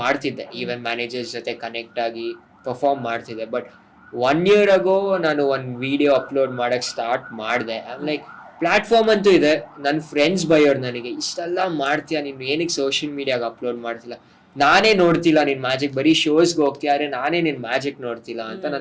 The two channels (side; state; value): both; identical; correlation 1.00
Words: ಮಾಡ್ತಿದ್ದೆ, ಈವೆಂಟ್ ಮ್ಯಾನೇಜರ್ಸ್ ಜೊತೆ ಕನೆಕ್ಟ್ ಆಗಿ ಪರ್ಫಾರ್ಮ್ ಮಾಡ್ತಿದ್ದೆ. ಬಟ್ 1 year ago ನಾನು ಒಂದು ವಿಡಿಯೋ ಅಪ್ಲೋಡ್ ಮಾಡಕ್ಕೆ ಸ್ಟಾರ್ಟ್ ಮಾಡಿದೆ. ಐಮ್ ಲೈಕ್, ಪ್ಲಾಟ್ಫಾರ್ಮ್ ಅಂತೂ ಇದೆ, ನನ್ನ ಫ್ರೆಂಡ್ಸ್ ಬೈಯೋರು ನನಗೆ, ಇಷ್ಟೆಲ್ಲ ಮಾಡ್ತೀಯಾ ನೀನು, ಏನಕ್ಕೆ ಸೋಷಿಯಲ್ ಮೀಡಿಯಾಗೆ ಅಪ್ಲೋಡ್ ಮಾಡ್ತಿಲ್ಲ, ನಾನೇ ನೋಡ್ತಿಲ್ಲ ನಿನ್ ಮ್ಯಾಜಿಕ್, ಬರೀ ಶೋಸ್ಗೆ ಹೋಗ್ತಿಯಾರೆ, ನಾನೇ ನಿನ್ ಮ್ಯಾಜಿಕ್ ನೋಡ್ತಿಲ್ಲ ಅಂತ